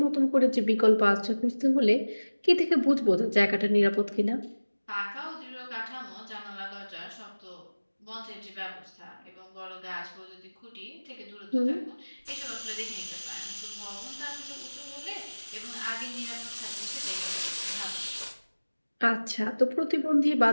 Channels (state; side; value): inverted; both; correlation -1.00